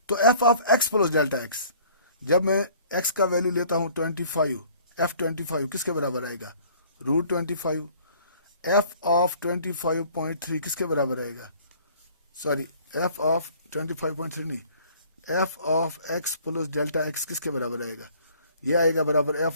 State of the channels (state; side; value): inverted; both; correlation -0.54